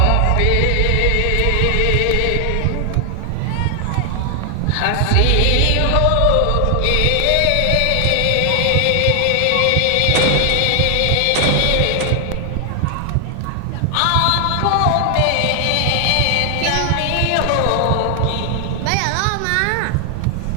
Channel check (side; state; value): both; different; correlation 0.00